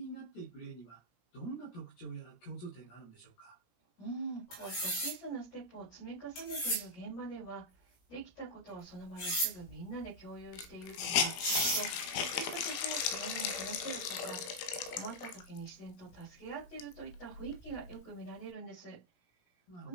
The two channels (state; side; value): late; right; 17 ms